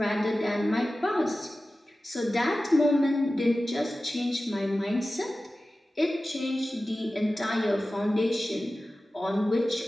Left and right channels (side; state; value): both; normal; correlation 0.95